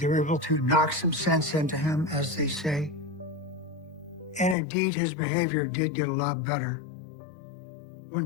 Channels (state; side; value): drops out; right; at 4.5 s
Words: were able to knock some sense into him, as they say. And indeed, his behavior did get a lot better.